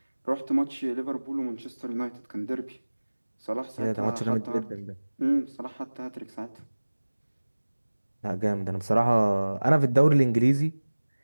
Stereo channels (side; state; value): both; inverted; correlation -1.00